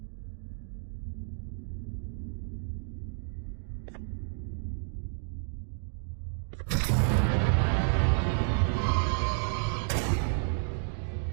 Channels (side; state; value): left; silent; 57 dB below the other